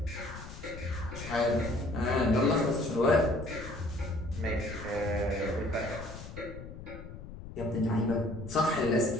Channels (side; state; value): left; noise; rumble, 12 dB below the sound